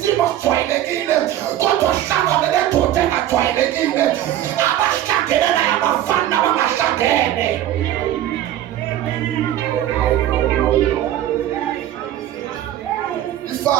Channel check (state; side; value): quieter; left; 12.4 dB